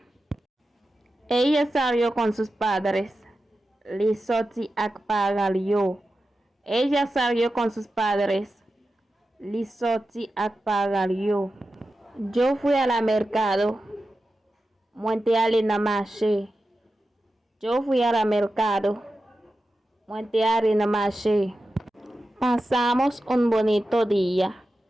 Ella salió con sus padres. Li sorti ak paralyo. Ella salió con sus padres. Li sorti ak paralyo. Yo fui a la mercado. Muente ale na marché. Yo fui a la mercado. Muente ale na marché. Pasamos un bonito día.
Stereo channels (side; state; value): both; normal; correlation 0.92